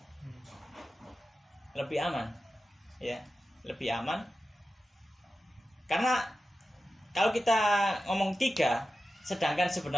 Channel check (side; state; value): both; normal; correlation 0.93